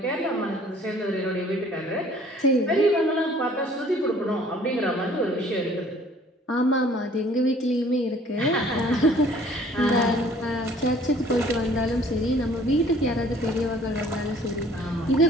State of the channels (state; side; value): normal; both; correlation 0.55